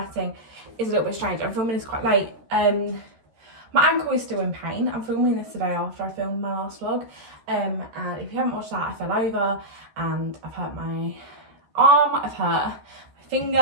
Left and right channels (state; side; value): late; left; 13 ms